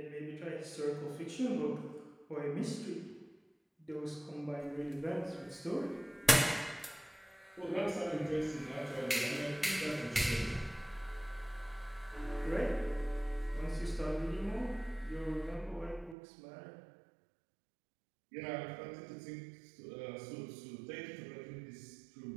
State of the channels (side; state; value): left; drops out; at 16.2 s